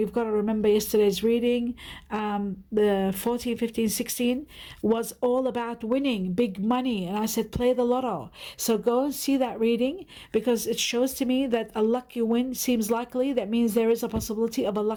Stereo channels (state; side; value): identical; both; correlation 1.00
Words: got to remember yesterday's reading, the 14, 15, 16 was all about winning big money. And I said, play the lotto. So go and see that reading, because it shows to me that a lucky win seems likely. That means there is a possibility of a